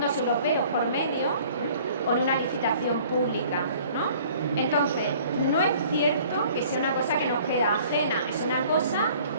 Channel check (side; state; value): both; inverted; correlation -0.52